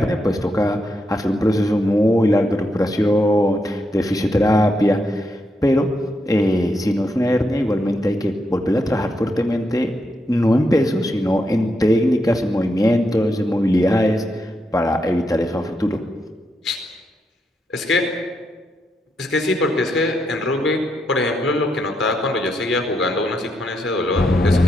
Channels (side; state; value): both; normal; correlation 0.82